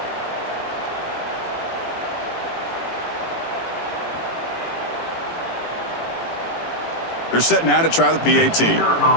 They're set now to try the PAT. For the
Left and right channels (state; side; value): late; right; 18 ms